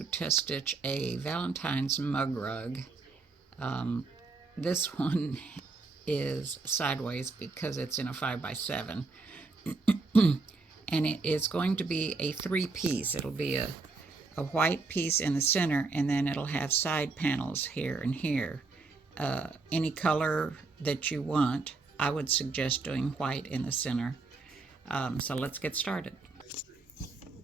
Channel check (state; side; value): quieter; left; 3.9 dB